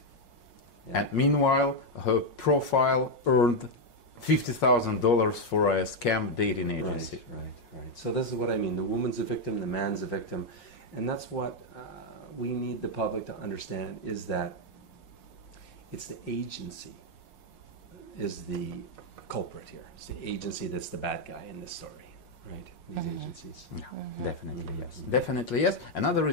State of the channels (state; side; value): late; right; 5.5 ms